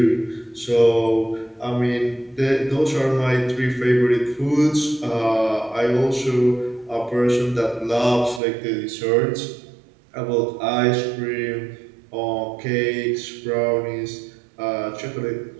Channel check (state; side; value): drops out; left; at 8.4 s